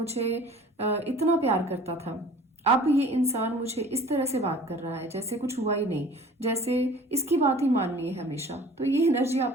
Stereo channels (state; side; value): normal; both; correlation 0.47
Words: इतना प्यार करता था, अब ये इंसान मुझे इस तरह से बात कर रहा है जैसे कुछ हुआ ही नहीं, जैसे इसकी बात ही माननी है हमेशा। तो ये एनर्जी